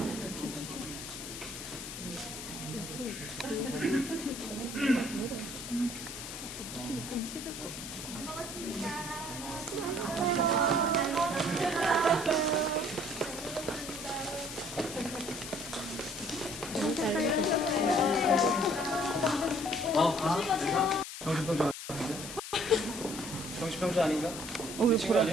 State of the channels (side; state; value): left; noise; hiss, 9 dB below the sound